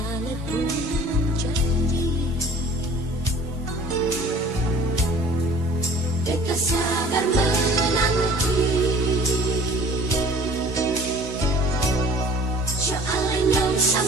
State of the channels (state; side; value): normal; both; correlation 0.48